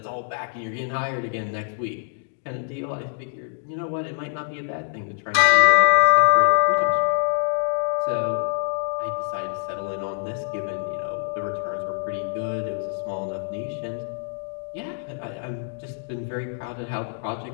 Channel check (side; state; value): right; silent; digital silence